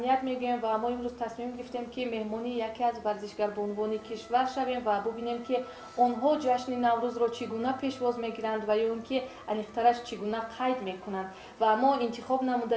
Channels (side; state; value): both; identical; correlation 1.00